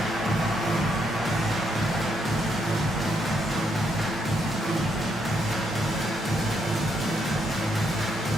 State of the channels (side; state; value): both; normal; correlation 0.76